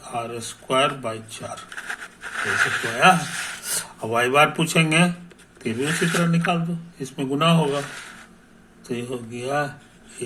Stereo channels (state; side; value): identical; both; correlation 1.00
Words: ऐसे तो आया। अब y बार पूछेंगे फिर भी उसी तरह निकाल दो, इसमें गुना होगा, तो ये हो गया